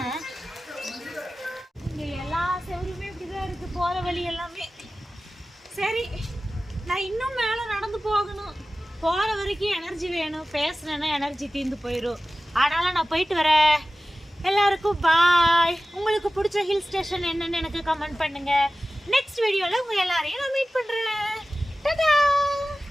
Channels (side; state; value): both; normal; correlation 0.96